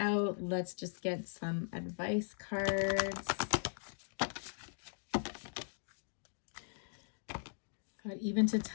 let's just get some advice cards. God, even to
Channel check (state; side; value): silent; right; digital silence